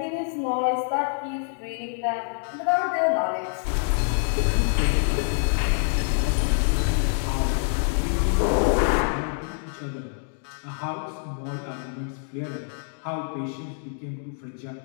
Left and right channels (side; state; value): right; silent; 61 dB below the other